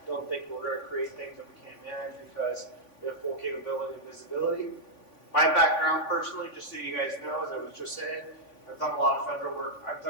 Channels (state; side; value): late; right; 3.5 ms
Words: Don't think we're going to create things that we can't manage because we have full capability and visibility. My background personally, just so you guys know, as I was just saying, I've done a lot of federal work. I've